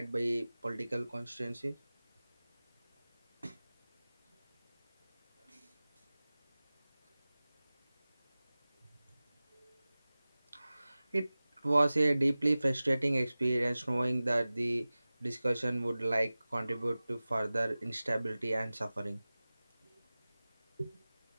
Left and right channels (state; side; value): inverted; both; correlation -0.98